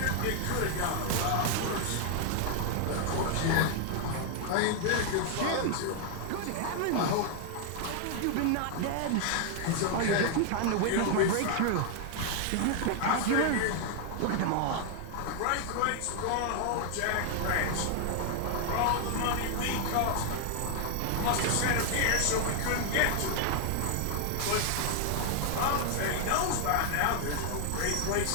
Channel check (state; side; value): different; both; correlation 0.00